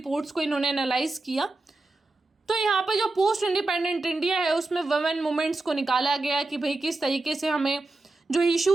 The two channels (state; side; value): quieter; left; 3.1 dB